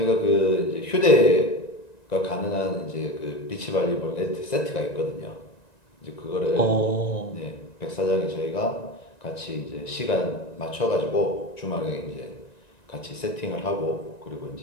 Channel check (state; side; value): late; right; 1.9 ms